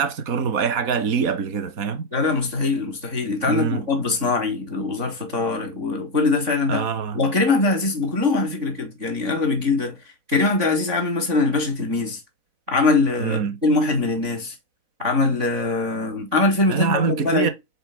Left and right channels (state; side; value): late; left; 3.5 ms